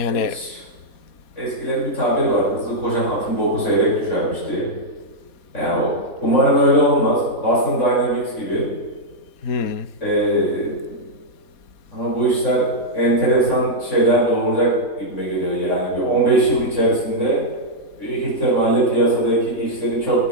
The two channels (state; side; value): late; right; 3.6 ms